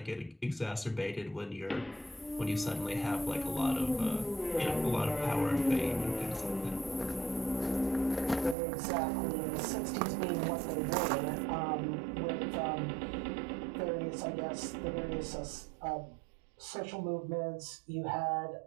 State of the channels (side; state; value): left; drops out; at 8.6 s